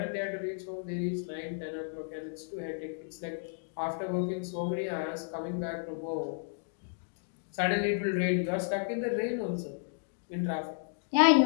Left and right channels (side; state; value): right; silent; digital silence